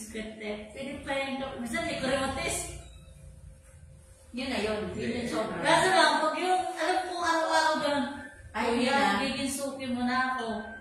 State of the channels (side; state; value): both; identical; correlation 1.00